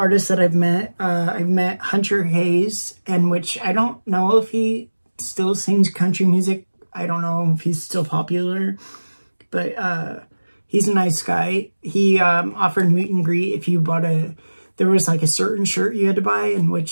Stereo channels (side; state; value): both; inverted; correlation -1.00